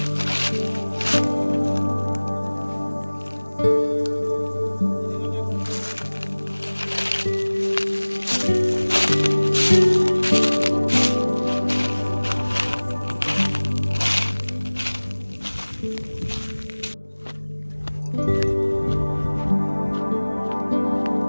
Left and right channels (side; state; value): both; inverted; correlation -1.00